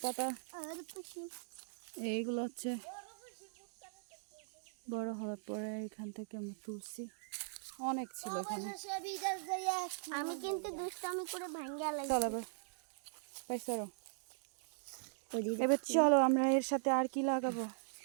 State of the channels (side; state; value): left; silent; digital silence